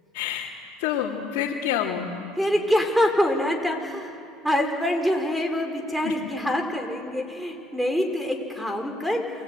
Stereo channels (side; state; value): both; normal; correlation 0.73